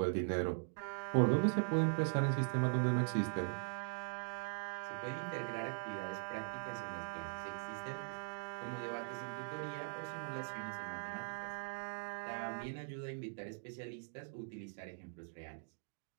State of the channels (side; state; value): left; silent; digital silence